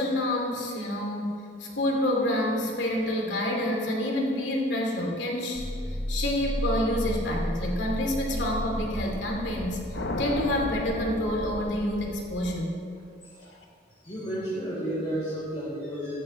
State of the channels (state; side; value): normal; both; correlation 0.49